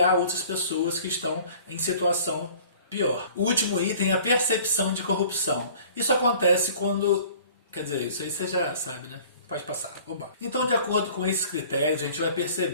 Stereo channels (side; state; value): both; inverted; correlation -0.49